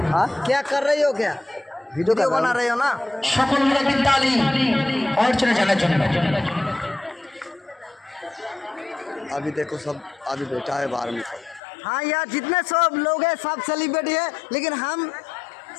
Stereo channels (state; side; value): drops out; right; at 11.6 s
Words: हाँ क्या कर रही हो, क्या वीडियो बना रही हो ना? সকল মিলে তালি অর্চনা জানার জন্য। अभी देखो सब अभी बैठा है बाहर में सब। हाँ यार जितने सब लोग हैं सब सेलिब्रिटी है, लेकिन हम